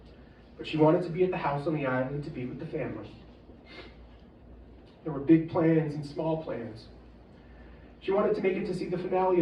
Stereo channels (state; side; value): identical; both; correlation 1.00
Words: but she wanted to be at the house on the island to be with the family. There were big plans and small plans. She wanted to make it to see the finale